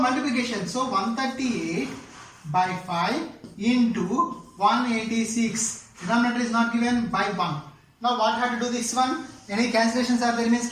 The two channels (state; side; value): identical; both; correlation 1.00